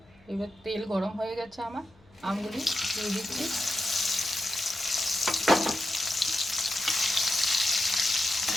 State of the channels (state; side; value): noise; left; hum, 30 dB below the sound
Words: এবার তেল গরম হয়ে গেছে, আমার আমগুলি দিয়ে দিচ্ছি।